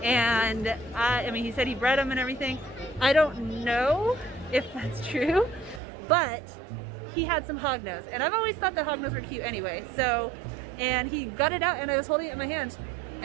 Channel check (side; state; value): left; drops out; at 5.8 s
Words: And I mean, he said he bred them and everything. I don't know if that's true, but he had some hognose, and I've always thought that hognose were cute anyway. So, and he got it out, and I was holding it in my hand,